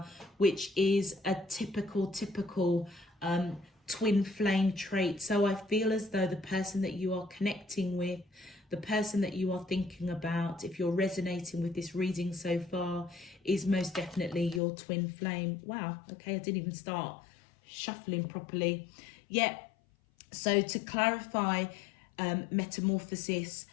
which is a typical twin flame trait. So I feel as though the person that you are connecting with, the person that you are thinking about, if you're resonating with this reading so far, is most definitely your twin flame. Wow, okay, I didn't even start shuffling properly. Yeah, so to clarify metamorphosis,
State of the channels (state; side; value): drops out; right; at 14.6 s